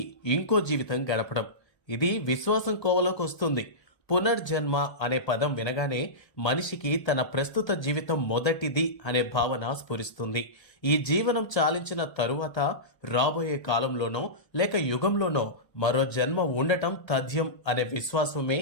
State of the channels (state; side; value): late; right; 1.3 ms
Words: ఇంకో జీవితం గడపడం. ఇది విశ్వాసం కోవలోకి వస్తుంది. పునర్జన్మ అనే పదం వినగానే మనిషికి తన ప్రస్తుత జీవితం మొదటిది అనే భావన స్ఫురిస్తుంది. ఈ జీవనం చాలించిన తరువాత రాబోయే కాలంలోనో లేక యుగంలోనో మరో జన్మ ఉండటం తథ్యం అనే విశ్వాసమే